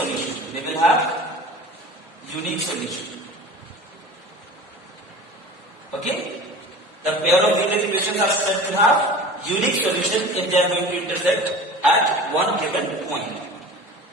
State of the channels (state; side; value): normal; both; correlation 0.38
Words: They will have unique solution. Okay? The pair of linear equations are said to have unique solution if they are going to intersect at one given point.